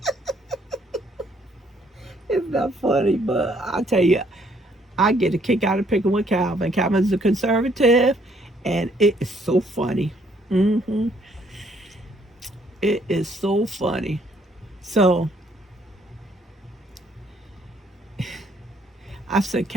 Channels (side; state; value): both; normal; correlation 0.67